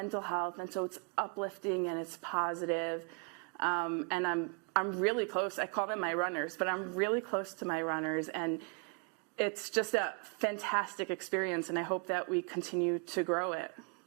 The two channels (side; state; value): left; quieter; 34.8 dB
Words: health, and so it's uplifting and it's positive. And I'm really close. I call them my runners, but I'm really close to my runners, and it's just a fantastic experience, and I hope that we continue to grow it.